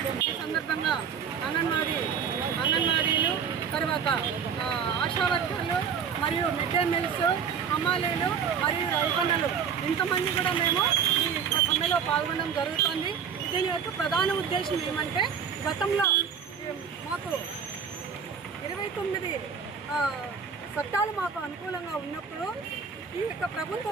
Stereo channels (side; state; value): left; quieter; 6.9 dB